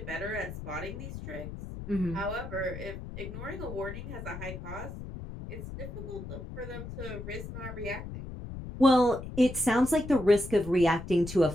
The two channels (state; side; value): noise; left; rumble, 10 dB below the sound